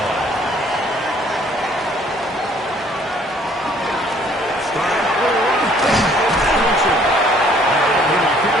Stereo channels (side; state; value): both; normal; correlation 0.59